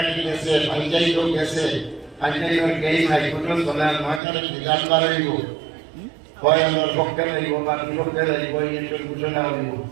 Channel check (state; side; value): drops out; left; at 4.2 s